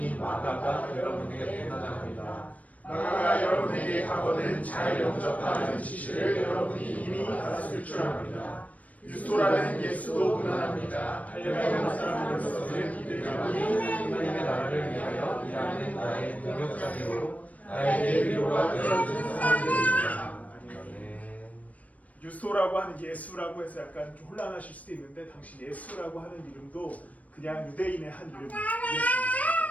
마가가 여러분에게 편안합니다. 마가가 여러분에게 하거든 잘 영접하는 지시를 여러분이 이미 알았을 줄 압니다. 유스토라는 예수도 무난합니다. 할례받은 사람으로서는 이들이 하나님의 나라를 위하여 일하는 나의 동역자이고 나에게 위로가 되어준 사람들입니다. 유스토라고 하는 예수라고 해서 약간 좀 혼란하실 수도 있는데 당시 예수라고 하는 이름도 그냥 유대인의 한 이름이었습니다.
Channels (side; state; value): right; late; 0.070 ms